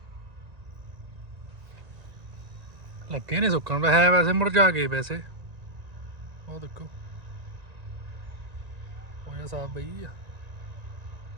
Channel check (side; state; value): left; late; 1.9 ms